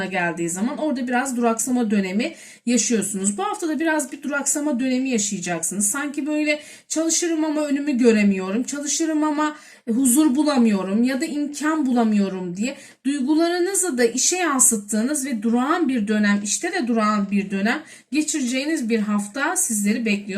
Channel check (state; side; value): identical; both; correlation 1.00